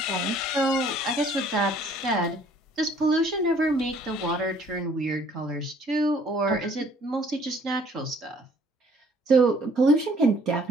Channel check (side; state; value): both; normal; correlation 0.59